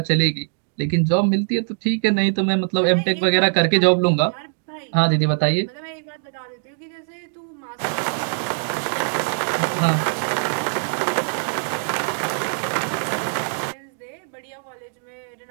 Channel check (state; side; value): silent; left; 61 dB below the other